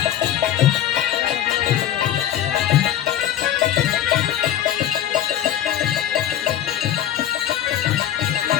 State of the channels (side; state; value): right; quieter; 11.4 dB